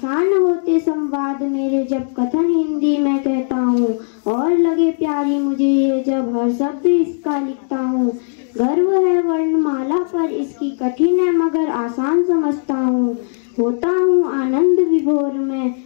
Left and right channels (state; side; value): silent; right; digital silence